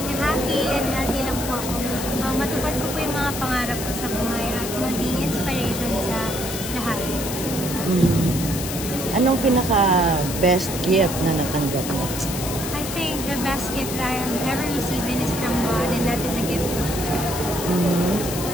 happy and healthy lang po ako. Matupad ko po yung mga pangarap ko sa buhay at maging inspiration sa lahat. Anong pinaka-best gift na natanggap mo? I think the best gift that I have ever received is from God, and that is a gift of God.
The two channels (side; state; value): left; noise; hiss, 6 dB below the sound